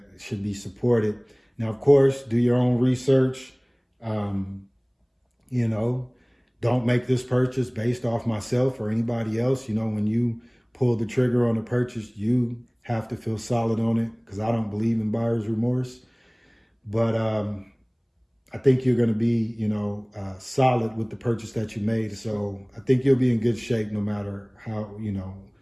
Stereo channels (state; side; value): identical; both; correlation 1.00